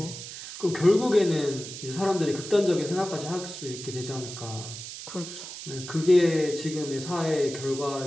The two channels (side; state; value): right; noise; hiss, 10 dB below the sound